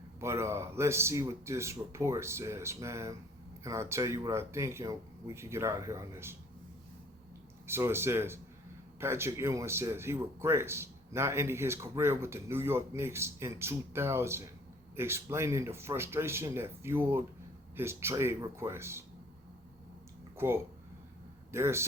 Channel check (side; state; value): both; normal; correlation 0.55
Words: But let's see what this report says, man. And I'll tell you what I think, and we can get out of here on this. So it says, Patrick Ewing says he regrets not ending his career with the New York Knicks in 2000, explaining the frustration that fueled his trade request. Quote, there are